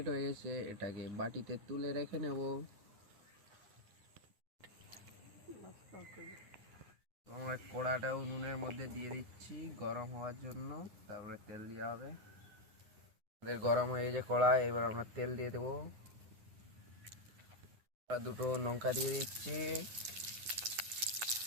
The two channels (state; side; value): late; left; 9.7 ms